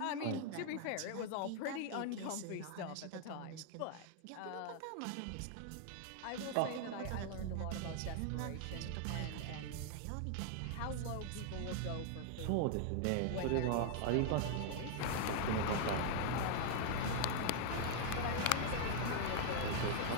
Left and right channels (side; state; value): both; different; correlation 0.00